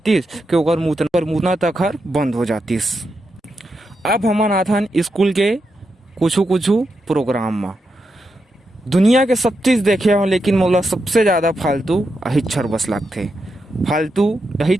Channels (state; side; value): normal; both; correlation 0.85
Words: कि ओकर मुतना तक हर बंद हो जातीस। अब हमन आथन स्कूल के कुछ प्रोग्राम में दुनिया के सब चीज़ देखे हो, लेकिन मोला सबसे ज़्यादा फालतू अहिच्छर बस लगते। फालतू